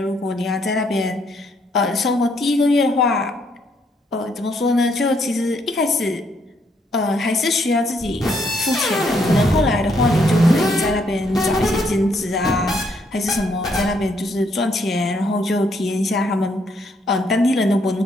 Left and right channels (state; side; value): normal; both; correlation 0.72